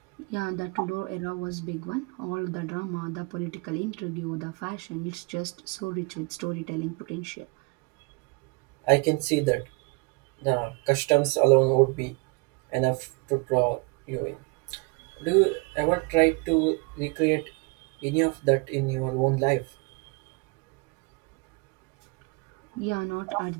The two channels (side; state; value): left; quieter; 29.8 dB